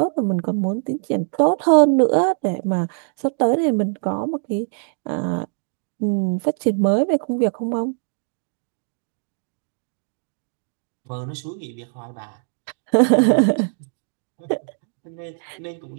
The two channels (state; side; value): silent; left; digital silence